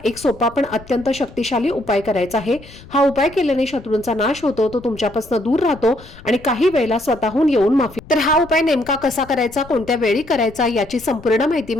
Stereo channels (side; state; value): left; noise; rumble, 20 dB below the sound